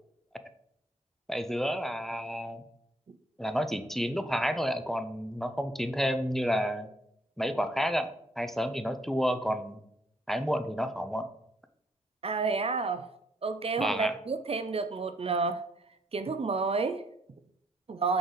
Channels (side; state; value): both; normal; correlation 0.69